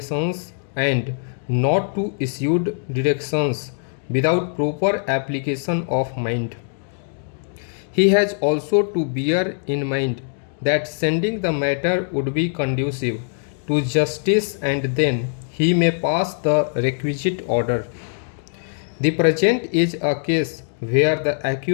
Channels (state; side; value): silent; right; digital silence